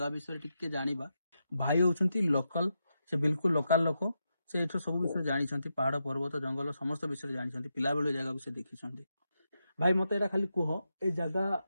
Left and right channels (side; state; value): both; inverted; correlation -0.85